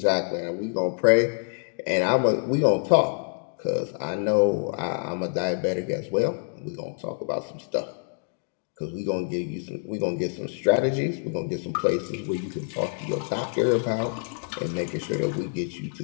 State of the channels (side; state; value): right; silent; 57 dB below the other